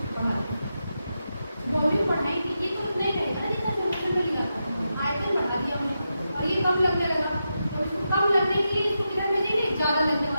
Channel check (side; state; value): both; inverted; correlation -0.88